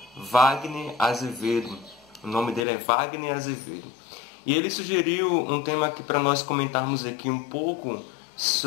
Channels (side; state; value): right; drops out; at 2.7 s